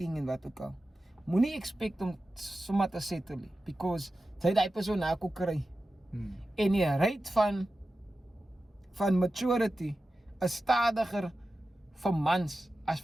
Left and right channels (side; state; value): both; normal; correlation 0.93